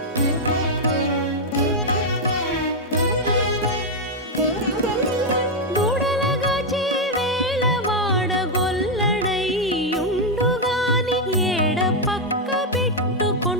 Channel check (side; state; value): both; normal; correlation 0.01